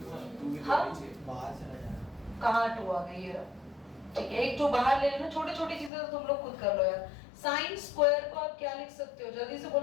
हाँ, बाहर चला जाएगा। कहाँ 2 आ गई है? ठीक है, एक 2 बाहर ले लेना, छोटी छोटी चीजें तो तुम लोग खुद कर लो यार। साइन स्क्वायर को आप क्या लिख सकते हो, जल्दी से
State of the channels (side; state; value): right; drops out; at 5.9 s